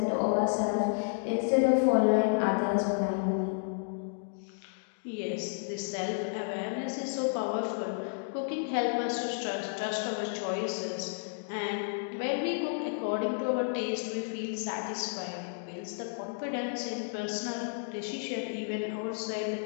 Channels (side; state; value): right; silent; digital silence